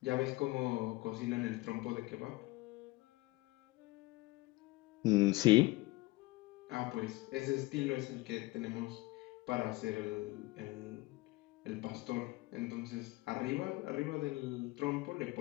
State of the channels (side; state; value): right; quieter; 21.0 dB